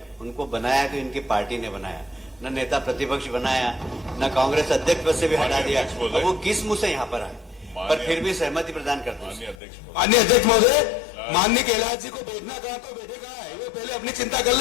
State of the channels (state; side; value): drops out; right; at 9.6 s